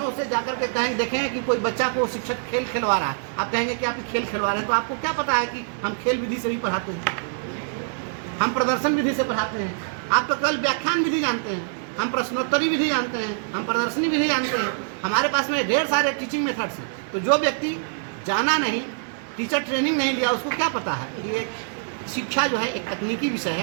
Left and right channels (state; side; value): silent; left; digital silence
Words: से जाकर के कहेंगे, देखेंगे कि कोई बच्चा को शिक्षक खेल खिलवा रहा है, आप कहेंगे कि आप खेल खिलवा रहे हैं, तो आपको क्या पता है कि हम खेल विधि से भी पढ़ाते हैं, हम प्रदर्शन विधि से पढ़ाते हैं। आप तो केवल व्याख्यान विधि जानते हैं, हम प्रश्नोत्तरी विधि जानते हैं, हम प्रदर्शनी विधि जानते हैं। हमारे पास में ढेर सारे टीचिंग मेथड्स हैं। तो जो व्यक्ति जाना नहीं, टीचर ट्रेनिंग नहीं लिया, उसको क्या पता है कि ये शिक्षा जो है एक तकनीकी विषय